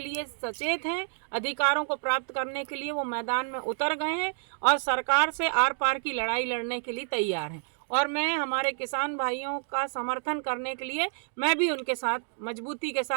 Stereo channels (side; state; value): left; silent; 59 dB below the other